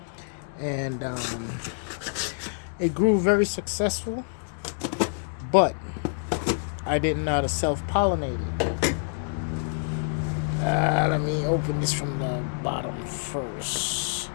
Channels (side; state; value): right; silent; digital silence